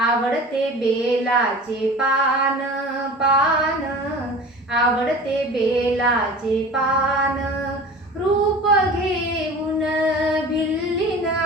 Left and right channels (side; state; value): both; normal; correlation 0.38